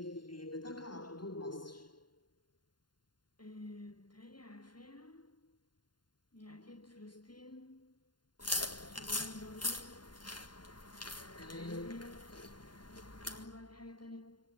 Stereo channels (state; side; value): late; right; 0.71 ms